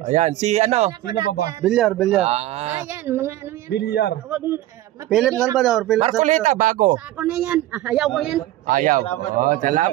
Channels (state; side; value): quieter; left; 14.9 dB